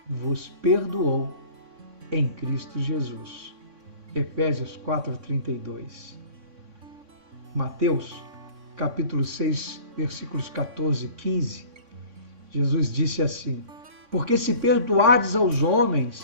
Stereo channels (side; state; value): left; late; 3.6 ms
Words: vos perdoou em Cristo Jesus. Efésios 4:32. Mateus, capítulo 6, versículos 14 e 15, Jesus disse assim: porque se perdoardes aos